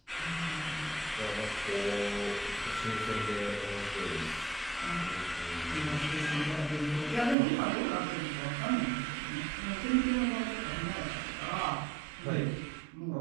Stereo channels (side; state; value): left; drops out; at 7.4 s